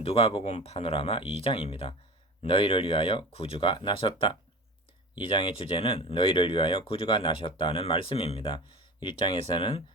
누가복음 파노라마 2장입니다. 너희를 위하여 구주가 나셨다. 2장의 주제는 너희를 위하여 구주가 나셨다는 말씀입니다. 1장에서는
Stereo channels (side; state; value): both; normal; correlation 0.34